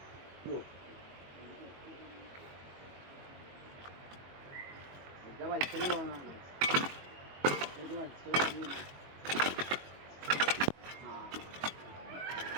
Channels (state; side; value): late; left; 22 ms